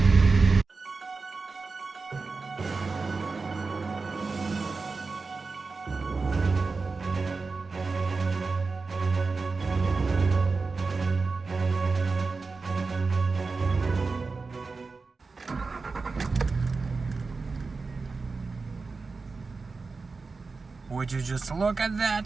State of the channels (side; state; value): left; quieter; 4.2 dB